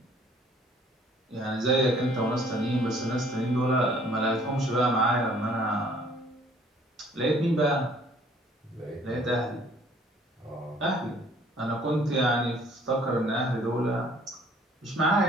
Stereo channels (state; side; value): normal; both; correlation 0.58